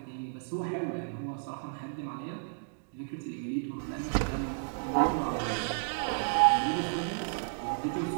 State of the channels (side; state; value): left; silent; digital silence